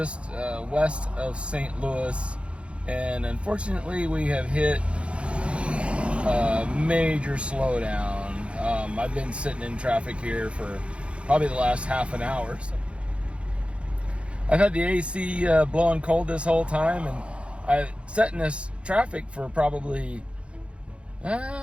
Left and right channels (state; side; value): late; left; 0.059 ms